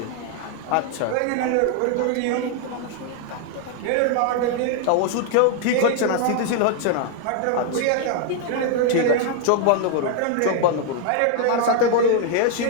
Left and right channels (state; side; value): different; both; correlation 0.00